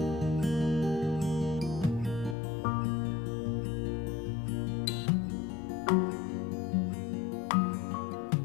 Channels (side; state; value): right; drops out; at 2.4 s